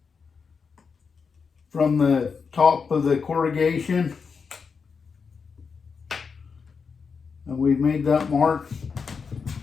from the top of the corrugation, and we've made that mark.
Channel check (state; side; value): quieter; right; 5.5 dB